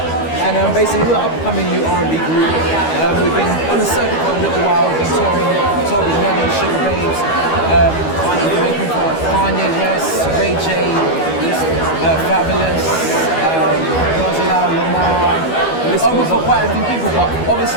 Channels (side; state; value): right; late; 12 ms